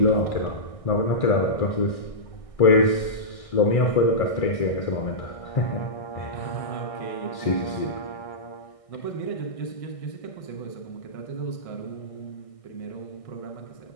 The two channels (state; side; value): late; right; 1.6 ms